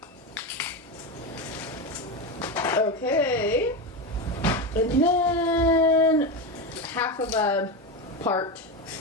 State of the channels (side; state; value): both; normal; correlation 0.17